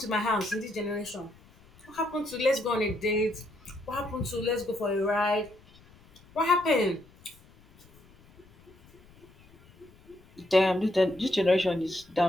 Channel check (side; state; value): left; noise; rumble, 26 dB below the sound